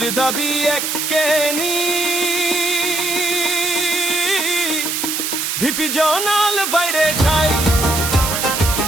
দাবি এককেনি, ভিপি জনাল বাইরে যাই।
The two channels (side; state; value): right; noise; hiss, 1 dB below the sound